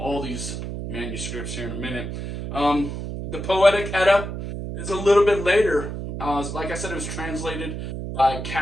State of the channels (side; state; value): right; noise; hum, 6 dB below the sound